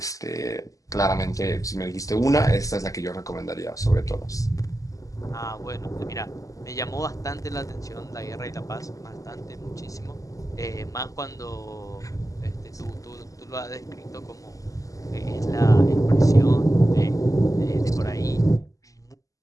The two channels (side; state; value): right; late; 0.16 ms